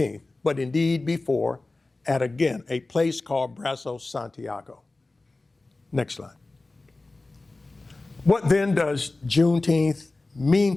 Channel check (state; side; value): quieter; right; 3.2 dB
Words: but indeed before at, again, a place called Brazos Santiago. Next slide. What then does Juneteenth mean